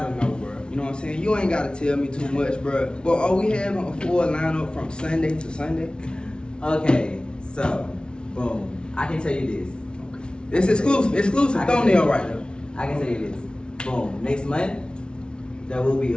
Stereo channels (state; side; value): late; right; 0.056 ms